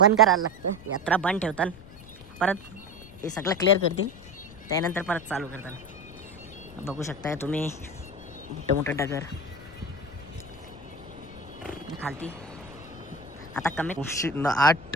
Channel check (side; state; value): left; noise; rumble, 19 dB below the sound